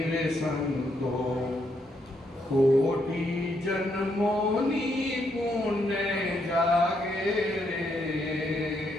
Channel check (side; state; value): both; normal; correlation 0.76